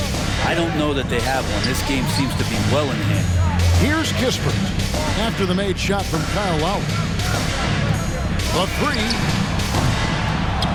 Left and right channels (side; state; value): both; identical; correlation 1.00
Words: I don't know that they have one. This game seems to be well in hand. Here's Kispert after the made shot from Kyle Lowry. The 3.